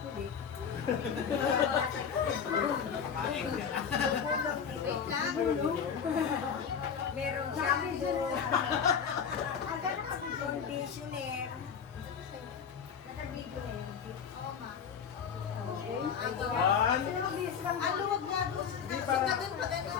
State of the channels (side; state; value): right; quieter; 7.1 dB